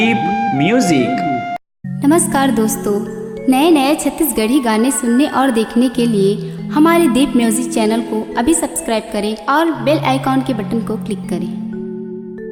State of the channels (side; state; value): both; identical; correlation 1.00